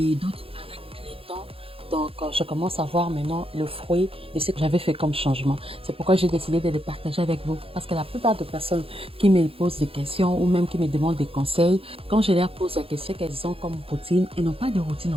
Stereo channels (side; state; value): left; late; 0.27 ms